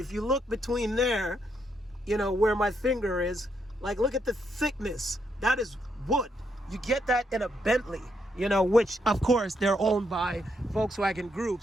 you look between there, you know, where my finger is, like, look at the thickness. That is wood. You get that in a Bentley, you know, which, of course, they're owned by Volkswagen Group,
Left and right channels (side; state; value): both; normal; correlation 0.77